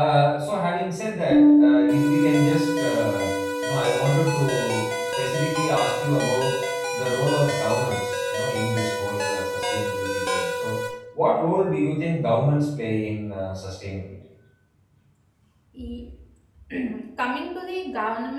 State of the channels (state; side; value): identical; both; correlation 1.00